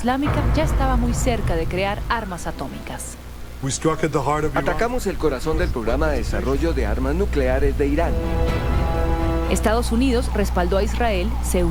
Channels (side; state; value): both; identical; correlation 1.00